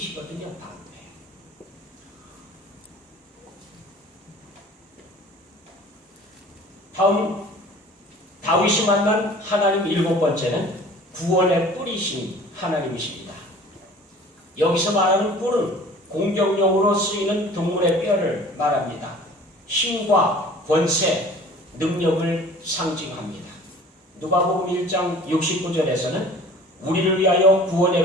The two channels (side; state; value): both; normal; correlation 0.46